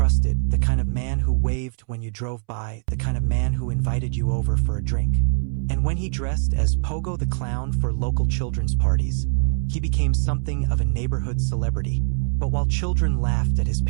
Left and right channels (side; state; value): left; silent; 64 dB below the other